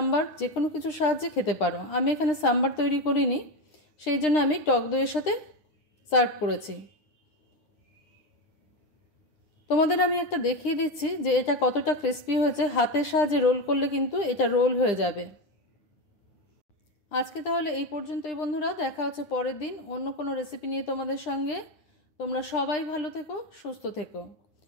যে কোনো কিছুর সাহায্যে খেতে পারো। আমি এখানে সাম্বার তৈরি করিনি, সেই জন্য আমি টক দইয়ের সাথে সার্ভ করেছি। তোমাদের আমি একটা দেখিয়ে দিচ্ছি যে এটা কতটা ক্রিস্পি হয়েছে, হাতের সাহায্যে রোল করলে কিন্তু এটা রোল হয়ে যাবে। আজকে তাহলে এই পর্যন্তই বন্ধুরা, দেখা হচ্ছে পরের দিন অন্য কোনো রেসিপি নিয়ে তোমাদের সঙ্গে। তোমরা সবাই ভালো থেকো, সুস্থ থেকো।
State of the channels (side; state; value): right; late; 9.9 ms